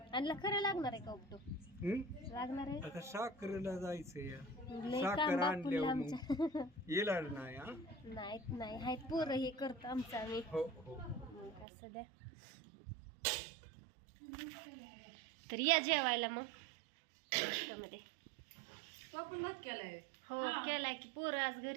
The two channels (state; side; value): drops out; left; at 11.7 s